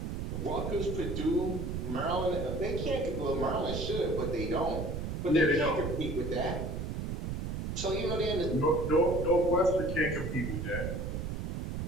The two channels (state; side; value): noise; right; rumble, 3 dB below the sound